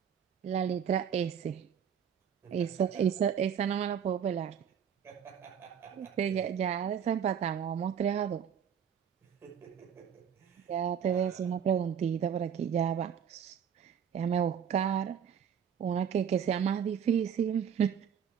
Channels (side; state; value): left; quieter; 8.1 dB